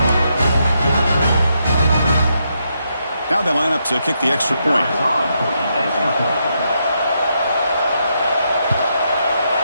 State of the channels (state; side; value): inverted; both; correlation -0.80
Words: Now they line up to kick the extra point.